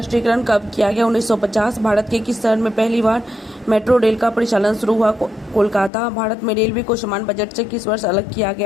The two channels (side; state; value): right; drops out; at 5.9 s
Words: कब किया गया? 1950। भारत के किस शहर में पहली बार मेट्रो रेल का परिचालन शुरू हुआ? कोलकाता। भारत में रेलवे को सामान्य बजट से किस वर्ष अलग किया